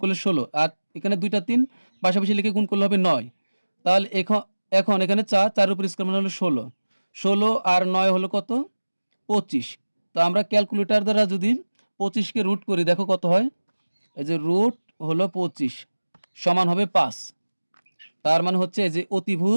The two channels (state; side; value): inverted; both; correlation -1.00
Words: করলে 16, আর এখানে 2টা 3 পাশাপাশি লিখে গুণ করলে হবে 9। তাহলে এখন এখানে 4-4-এর উপর স্কোয়ার মানে হলো 16 আর 9 হলো কত, 25। তো আমরা ক্যালকুলেটর দ্বারা যদি 25কে রুট করি, দেখো কত হয়, এই যে রুট হলো 25 সমান হবে 5, তার মানে হচ্ছে এই যে